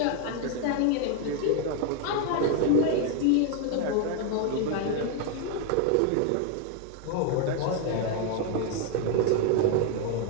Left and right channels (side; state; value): both; different; correlation 0.01